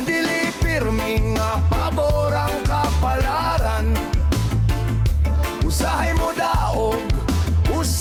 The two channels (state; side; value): identical; both; correlation 1.00